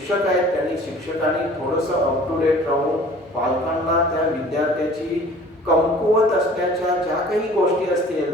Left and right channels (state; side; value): normal; both; correlation 0.48